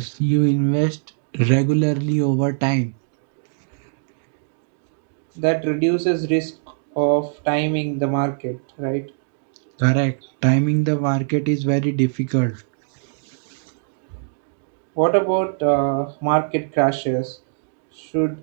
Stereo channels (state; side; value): silent; left; digital silence